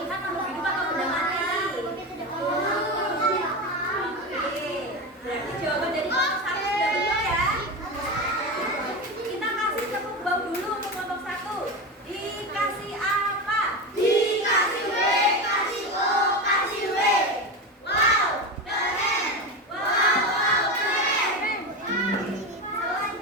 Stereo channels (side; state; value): both; normal; correlation 0.20